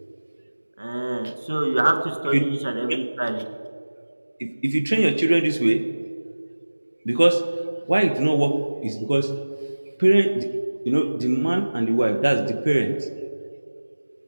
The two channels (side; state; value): both; inverted; correlation -1.00